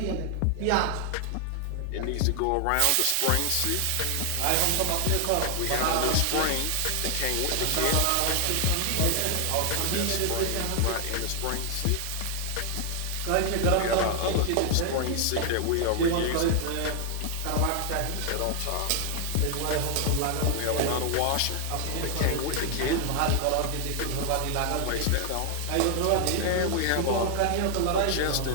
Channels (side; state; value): both; different; correlation 0.00